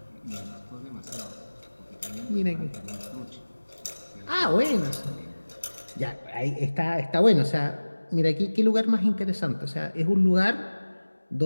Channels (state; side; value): inverted; both; correlation -1.00